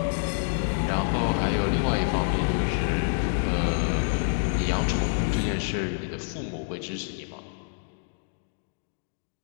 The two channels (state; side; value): silent; right; digital silence